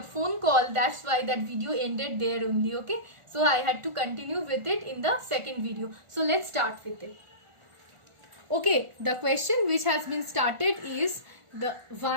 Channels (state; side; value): late; left; 1.4 ms